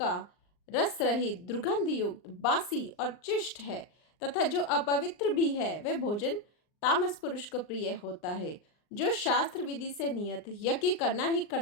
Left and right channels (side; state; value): right; late; 39 ms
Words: रस रहित, दुर्गंध युक्त, बासी और चिष्ट है तथा जो अपवित्र भी है वह भोजन तामस पुरुष को प्रिय होता है। जो शास्त्र विधि से नियत यज्ञ करना ही